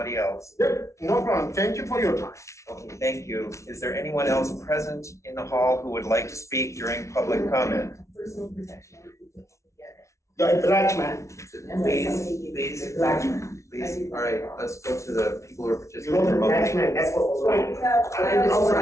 else. Yep, no problem. Thank you for your time. Okay, thank you. Is there anyone else present in the hall who would like to speak during public comment? Personal protection. You're a black man. Please, Black man. please. All right, let's go to the people who are participating You're a remotely. black man. That's what was wrong.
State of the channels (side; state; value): right; late; 0.14 ms